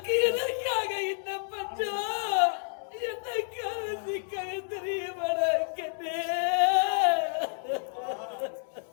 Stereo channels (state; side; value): silent; right; digital silence